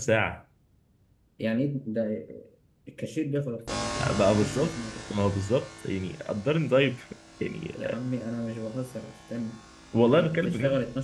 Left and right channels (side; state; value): both; identical; correlation 1.00